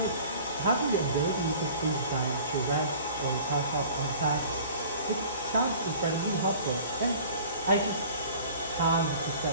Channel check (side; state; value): both; inverted; correlation -0.46